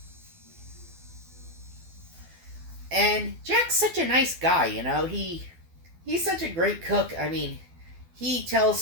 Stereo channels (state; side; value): late; left; 12 ms